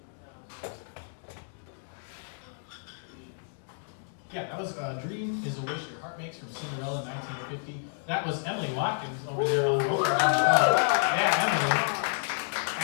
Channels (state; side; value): silent; right; digital silence